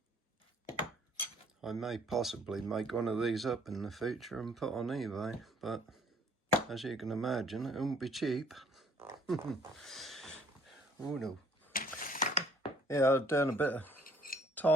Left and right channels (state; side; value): normal; both; correlation 0.61